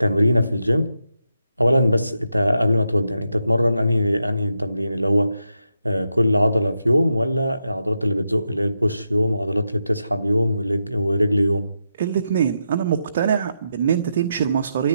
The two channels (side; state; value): both; inverted; correlation -0.85